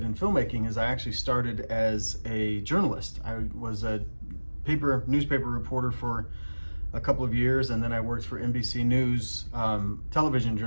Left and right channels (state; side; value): inverted; both; correlation -1.00